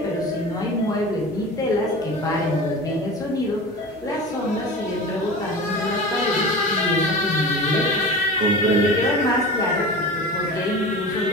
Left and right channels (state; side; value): normal; both; correlation 0.33